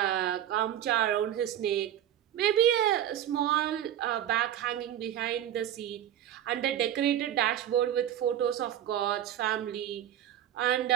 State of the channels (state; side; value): quieter; left; 11.1 dB